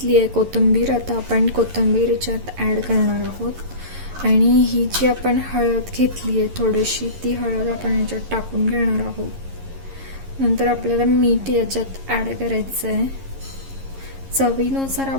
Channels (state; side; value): late; left; 11 ms